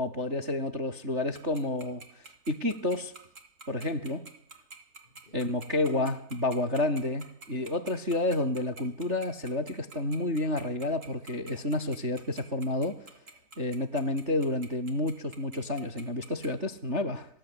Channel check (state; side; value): late; left; 3.4 ms